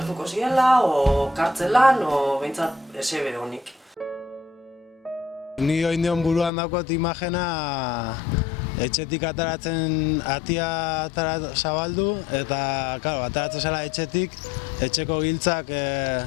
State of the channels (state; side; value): drops out; right; at 6.5 s